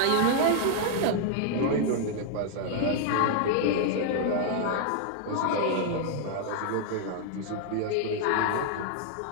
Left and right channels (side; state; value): both; different; correlation -0.01